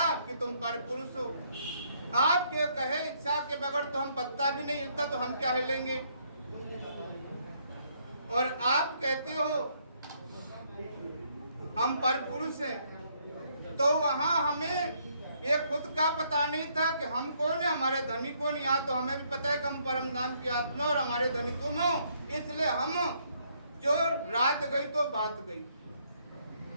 कि तुम परपुरुष हो। आपके कहे इच्छा के बगैर तो हम पत्ता भी नहीं हिलता, तो हम क्या हिलेंगे? और आप कहते हो हम परपुरुष हैं, तो वहां हमें ये खुद का पता नहीं था कि हम कौन है, हमारे धनी कौन। यहाँ तो हमें भी पता है कि हम परम धाम की आत्मा और हमारे धनी तुम हो, इसलिए हम जो रात गई तो बात गई।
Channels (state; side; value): inverted; both; correlation -0.70